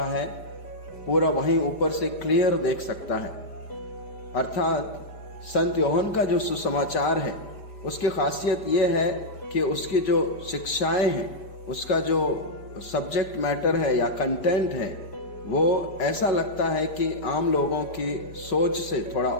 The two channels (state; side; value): late; right; 5.0 ms